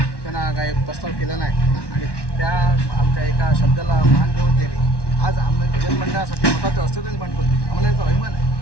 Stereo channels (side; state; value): right; late; 1.1 ms